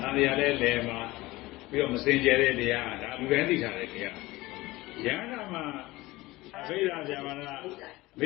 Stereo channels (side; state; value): right; quieter; 19.7 dB